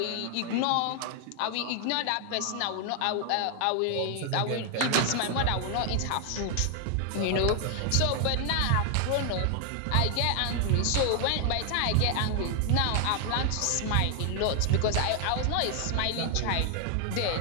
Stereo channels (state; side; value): different; both; correlation 0.00